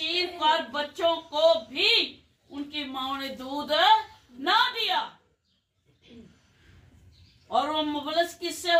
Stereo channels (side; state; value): both; identical; correlation 1.00